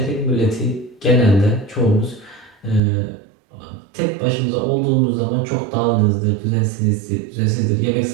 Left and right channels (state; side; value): drops out; left; at 2.8 s